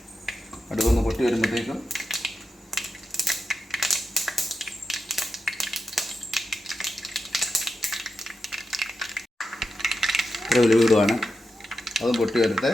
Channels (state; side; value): normal; both; correlation 0.88